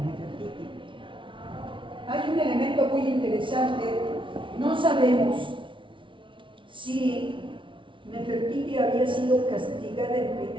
Hay un elemento muy interesante, no sabemos si Nefertiti había sido castigada en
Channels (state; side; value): late; left; 0.25 ms